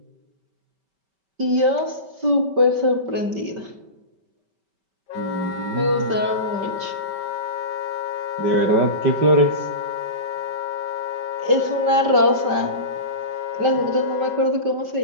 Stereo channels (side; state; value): left; late; 5.2 ms